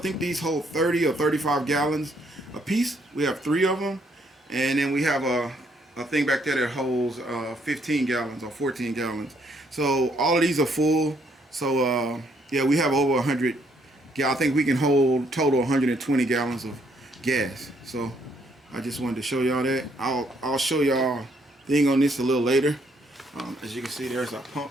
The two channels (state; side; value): normal; both; correlation 0.70